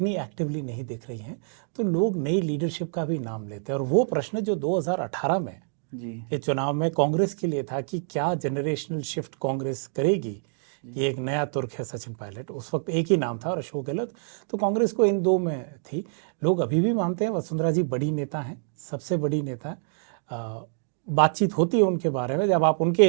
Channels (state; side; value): silent; left; digital silence